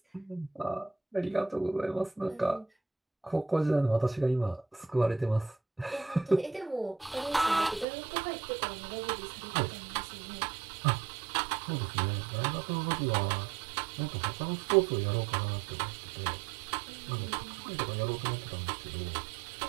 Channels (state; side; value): drops out; left; at 7.9 s